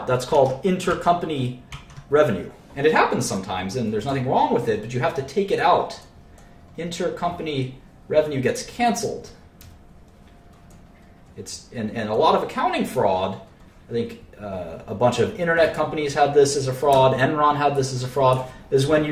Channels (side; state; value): both; identical; correlation 1.00